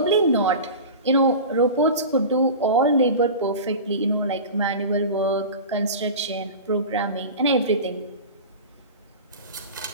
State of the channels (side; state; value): both; inverted; correlation -0.31